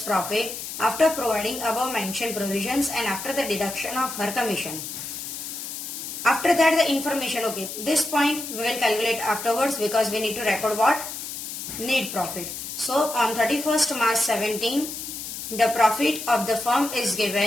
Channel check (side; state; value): left; noise; hiss, 8 dB below the sound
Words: profit after providing above mentioned provisions and after the deduction of her commission. After that the information, okay, this point we will calculate afterwards because we need to record what? Net profit. So on 31st March 17, the profit of the firm is